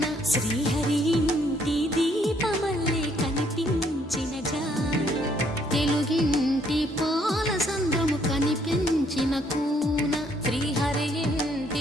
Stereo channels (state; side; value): normal; both; correlation 0.67